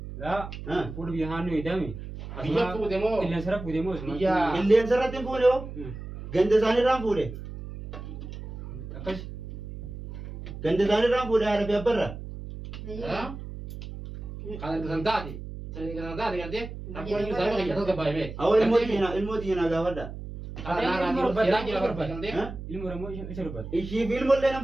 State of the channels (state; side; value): noise; right; hum, 10 dB below the sound